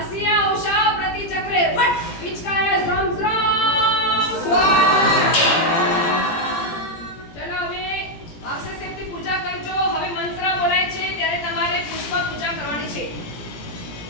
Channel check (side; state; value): right; late; 17 ms